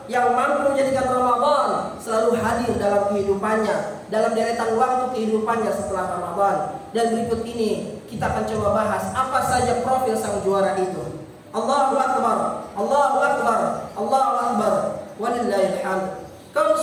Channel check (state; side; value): identical; both; correlation 1.00